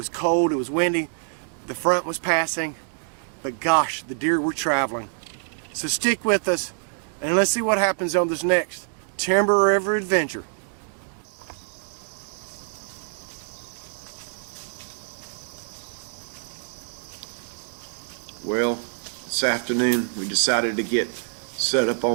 cold, it was windy, the front was passing, but gosh, the deer were traveling. So stick with us and let's see what happens on this next Timber River adventure. Well, this afternoon we decided to get set up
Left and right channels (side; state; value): left; silent; digital silence